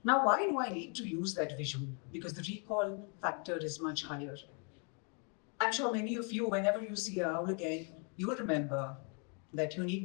Now, why do I need to use that visual? Because the recall factor is much higher. I'm sure many of you, whenever you see an owl again, you will remember that you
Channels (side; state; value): right; quieter; 37.1 dB